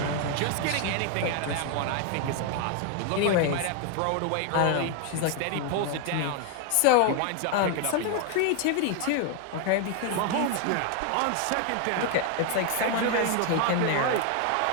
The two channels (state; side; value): different; both; correlation 0.01